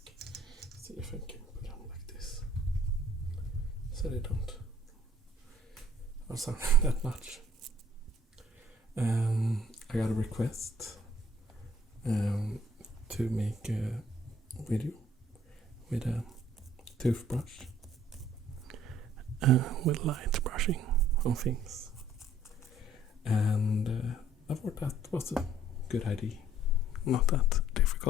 See if I can put them like this, so they don't sound that much. I got a request to make a video with a toothbrush with light brushing on things, and I thought that was a good idea, not that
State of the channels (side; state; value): both; normal; correlation 0.59